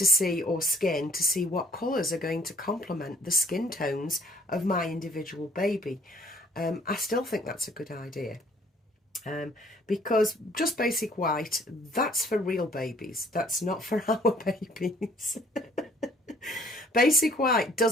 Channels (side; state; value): both; normal; correlation 0.59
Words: see, or skin, to see what colours are going to complement the skin tones of my individual baby. I still think that's a good idea, because just basic white, that's for real babies, that's not for our babies. Basic white